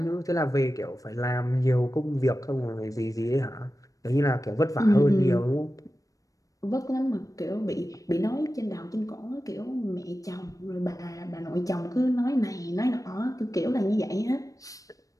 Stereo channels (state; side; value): late; right; 0.16 ms